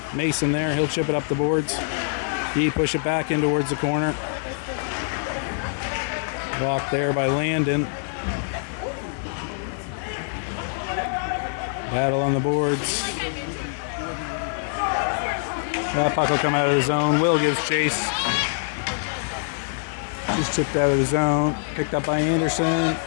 Mason there. He'll chip it up the boards. He push it back in towards the corner. Blocked there by Landon. Battle on the boards. That puck will come out of the zone. Will gives chase. Just chipped out of the zone. Picked up by Anderson.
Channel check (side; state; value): right; silent; digital silence